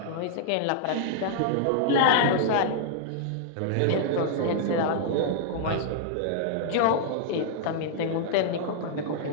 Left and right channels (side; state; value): both; different; correlation -0.01